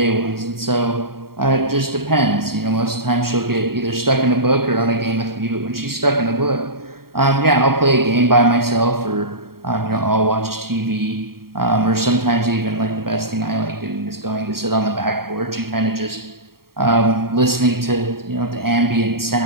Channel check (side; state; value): left; late; 0.93 ms